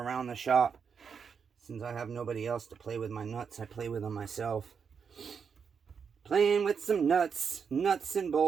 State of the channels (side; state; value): left; quieter; 6.4 dB